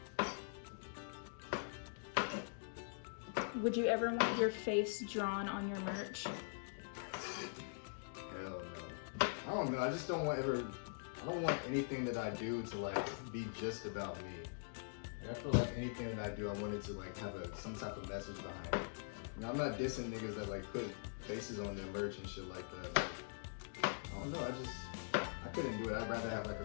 Would you ever want your face drawn on your merch? Hell no. I don't know. I just don't want I don't want anything that I do to like be just about me. Like, I feel like anything that I do, I want it to like have some type of message behind it. You know, I'm not dissing niggas that like put faces on their merch and shit like that. But I don't know. I couldn't do it. I'd rather have like a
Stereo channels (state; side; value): silent; right; digital silence